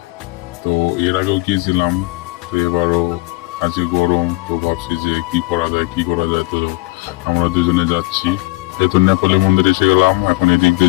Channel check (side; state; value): right; quieter; 22.8 dB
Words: তো এর আগেও গিয়েছিলাম, তো এবারও আজকে গরম, তো ভাবছি যে কি করা যায়। তো আমরা দুজনে যাচ্ছি। যেহেতু নেপালি মন্দিরে এসে গেলাম, এখন এদিক